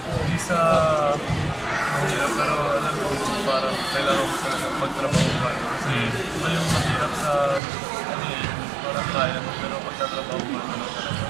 sa mahirap pero alam ko parang kailangan ko talaga magtrabaho pa kasi ito yung mahirap sa ano eh, parang kaya mo pero pagtatrabaho pa naman talaga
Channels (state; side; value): drops out; left; at 7.6 s